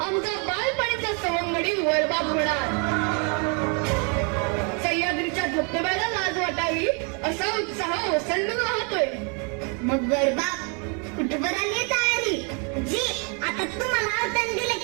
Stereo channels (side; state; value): left; quieter; 36.5 dB